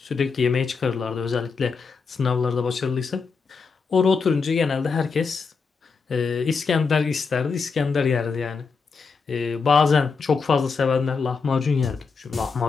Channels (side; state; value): right; quieter; 5.0 dB